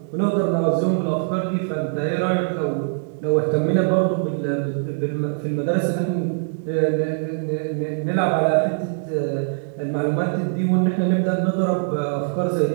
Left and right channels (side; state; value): left; silent; digital silence